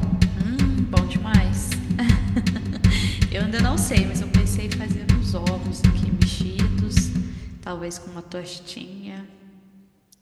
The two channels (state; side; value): identical; both; correlation 1.00